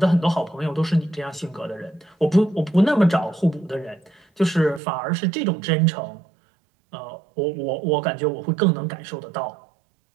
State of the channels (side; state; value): left; drops out; at 4.8 s